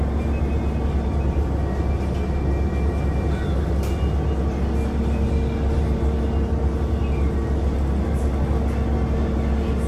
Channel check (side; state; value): both; identical; correlation 1.00